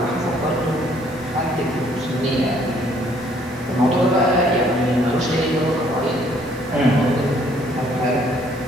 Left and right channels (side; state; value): both; normal; correlation 0.63